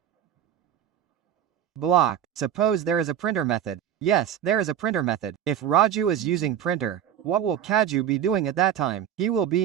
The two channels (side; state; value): left; quieter; 9.9 dB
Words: Block. Suppose there is a printer method. Yes, there is a printer method. If Raju is using printer, what will Kaju be doing at that time? He will